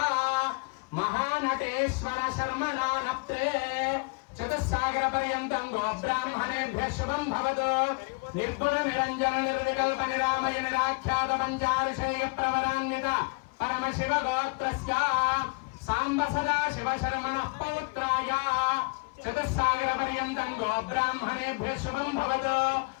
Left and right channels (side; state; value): right; quieter; 32.5 dB